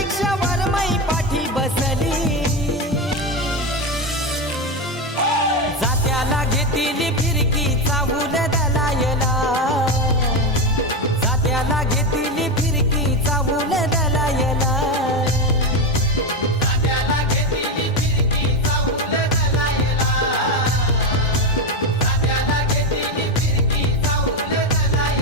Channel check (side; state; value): both; normal; correlation 0.14